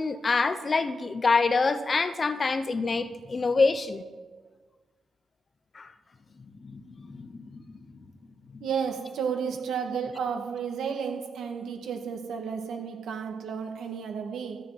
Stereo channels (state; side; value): normal; both; correlation 0.85